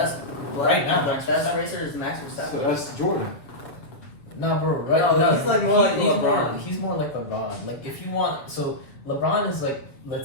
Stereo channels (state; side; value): late; right; 7.0 ms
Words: Right now, the Max best Verstappen. racer is Max Verstappen. So that's Jordan. No, bro. Right? No, he's like more like he's LeBron. He's more like LeBron. Like if you want, so LeBron is like,